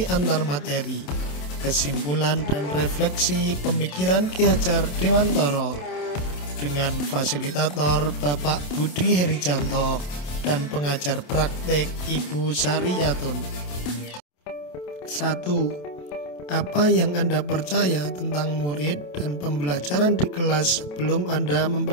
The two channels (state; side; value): late; right; 27 ms